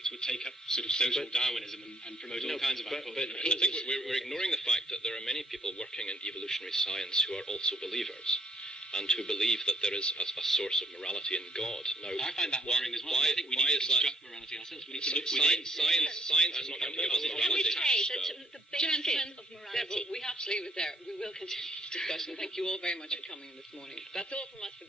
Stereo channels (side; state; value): both; normal; correlation 0.68